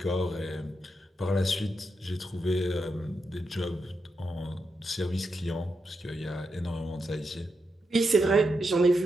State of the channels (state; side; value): normal; both; correlation 0.85